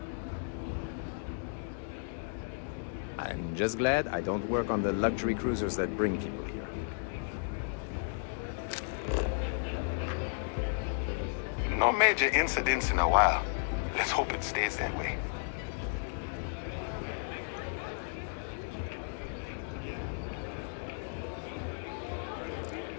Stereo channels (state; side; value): silent; right; digital silence